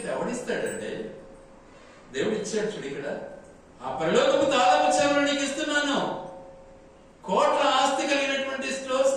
ఎవడిస్తాడంటే దేవుడు ఇచ్చాడు. చూడు ఇక్కడ, ఆ పరలోకపు తాళము చెవులు నీకు ఇస్తున్నాను. కోట్ల ఆస్తి కలిగినటువంటి స్టోర్స్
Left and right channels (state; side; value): identical; both; correlation 1.00